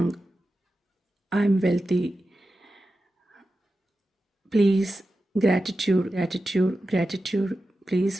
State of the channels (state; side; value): normal; both; correlation 0.92